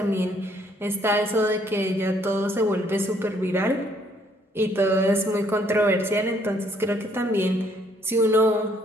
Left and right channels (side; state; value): both; normal; correlation 0.66